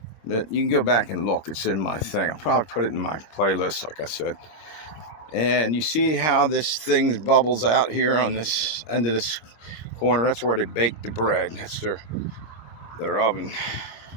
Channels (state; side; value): late; right; 26 ms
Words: You can go back and look. It's in my thing. I'll probably put it in my playlist, like I said. And you see how this thing bubbles out here on this end of this corner? That's where they bake the bread. That's their oven.